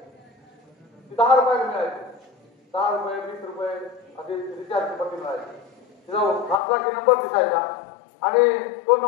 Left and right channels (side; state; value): right; drops out; at 6.6 s